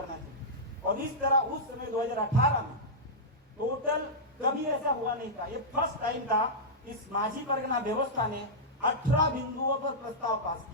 चाहिए। और इस तरह उस समय 2018 में टोटल कभी ऐसा हुआ नहीं था, ये फर्स्ट टाइम था इस माझी परगना व्यवस्था ने 18 बिंदुओं पर प्रस्ताव पास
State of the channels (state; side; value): normal; both; correlation -0.10